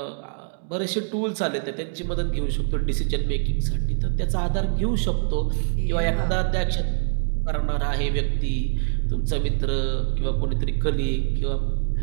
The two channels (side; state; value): left; silent; digital silence